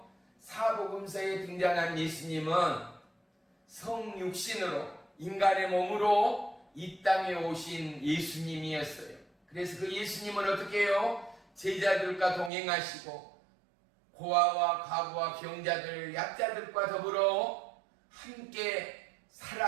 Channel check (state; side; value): drops out; left; at 12.5 s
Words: 사복음서에 등장한 예수님은 성육신으로 인간의 몸으로 이 땅에 오신 예수님이었어요. 그래서 그 예수님은 어떻게 해요? 제자들과 동행하시고 고아와 과부와 병자들, 약자들과 더불어 함께